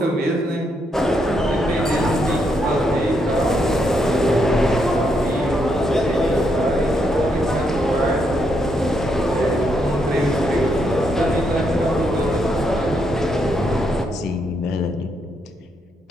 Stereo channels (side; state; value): both; normal; correlation 0.77